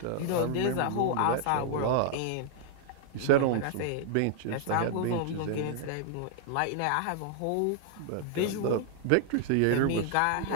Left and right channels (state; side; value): different; both; correlation -0.01